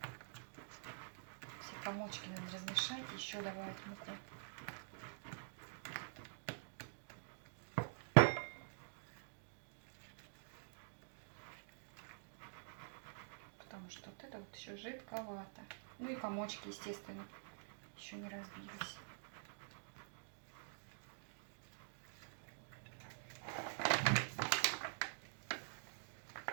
Все комочки надо размешать. Еще добавить муку. Потому что вот это вот еще жидковато. Ну и комочки, естественно, еще не разбились.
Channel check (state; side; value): silent; left; digital silence